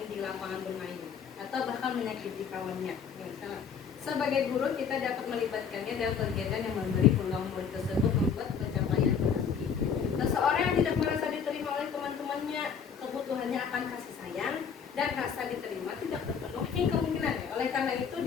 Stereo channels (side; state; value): right; quieter; 6.8 dB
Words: di lapangan bermain atau bahkan menyakiti kawannya. Sebagai guru kita dapat melibatkannya dalam kegiatan yang memberi peluang murid tersebut membuat pencapaian berarti. Seseorang yang tidak merasa diterima oleh teman-temannya, kebutuhannya akan kasih sayang dan rasa diterima tidak terpenuhi kemungkinannya. Oleh karena itu